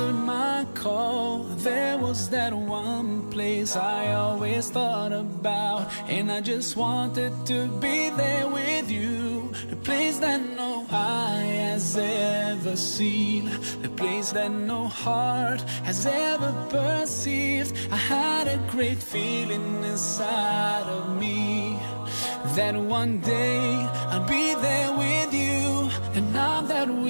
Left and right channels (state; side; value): inverted; both; correlation -1.00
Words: my call. There was that one place I always thought about, and I just wanted to be there with you. The place that no eye has ever seen, the place that no heart has ever perceived. I had a great feeling inside of me that one day I'll be there with you. And now that